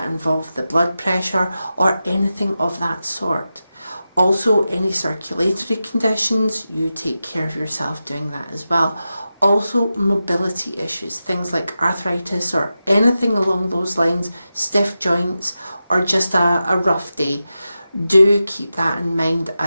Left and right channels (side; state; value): both; inverted; correlation -0.92